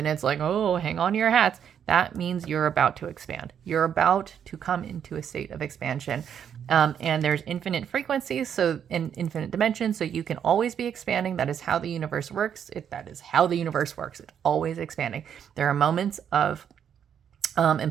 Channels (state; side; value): quieter; left; 8.5 dB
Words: it's like, oh, hang on to your hats, that means you're about to expand. You're about to come into a state of expansion. And there's infinite frequencies, so in infinite dimensions, so you can always be expanding. That is how the universe works. That is how the universe works. It's always expanding. There are moments of